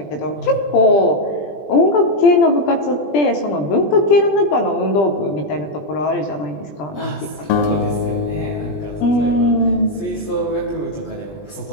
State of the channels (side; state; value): right; late; 20 ms